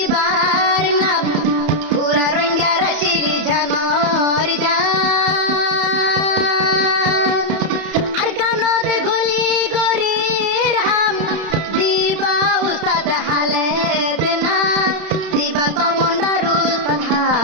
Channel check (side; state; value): left; late; 31 ms